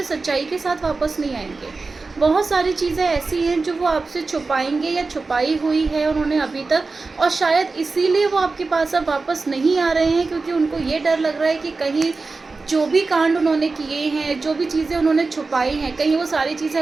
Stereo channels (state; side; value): quieter; left; 3.9 dB